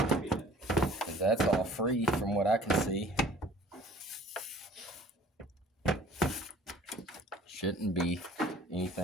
Because that's all free from what I can see. Shouldn't be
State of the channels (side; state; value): both; normal; correlation 0.50